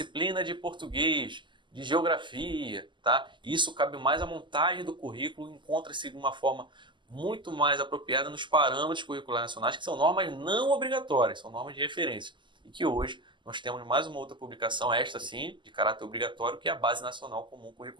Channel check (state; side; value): late; left; 0.23 ms